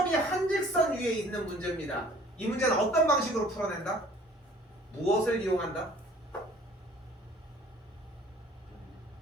한 직선 위에 있는 문제입니다. 이 문제는 어떤 방식으로 풀어낸다? 무엇을 이용한다?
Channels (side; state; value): both; normal; correlation 0.52